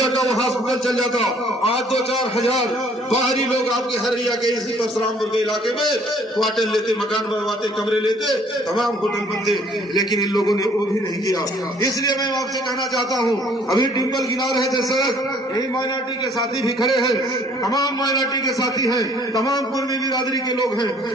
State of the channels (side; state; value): both; normal; correlation 0.59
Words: का वो हॉस्पिटल चल जाता, आज 2-4 हजार बाहरी लोग आपके हरैया के इसी परशुरामपुर के इलाके में क्वार्टर लेते, मकान बनवाते, कमरे लेते, तमाम होटल बनते, लेकिन इन लोगों ने वो भी नहीं किया। इसलिए मैं आपसे कहना चाहता हूँ, अभी डिम्पल गिना रहे थे सड़क, यही माइनॉरिटी के साथी भी खड़े हैं, तमाम माइनॉरिटी के साथी हैं, तमाम कुर्मी बिरादरी के लोग हैं।